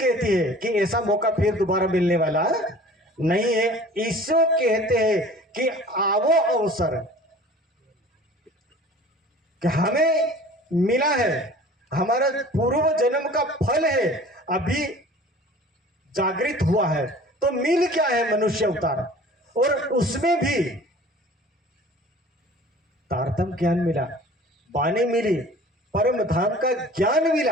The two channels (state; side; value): normal; both; correlation 0.45